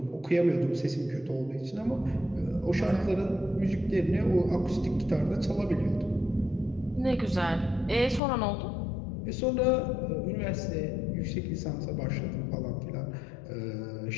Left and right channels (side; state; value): right; drops out; at 8.2 s